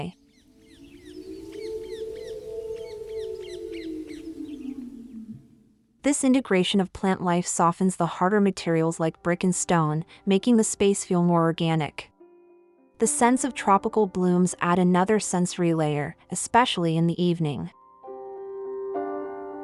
This integration of plant life softens the harder materials like brick and stone, making the space feel more organic. The scents of tropical blooms add another sensory layer, especially in the evening.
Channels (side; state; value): both; identical; correlation 1.00